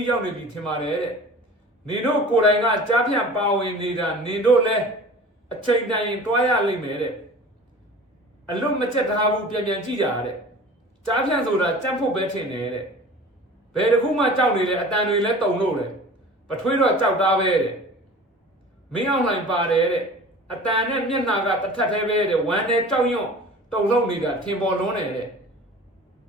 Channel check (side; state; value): both; normal; correlation 0.41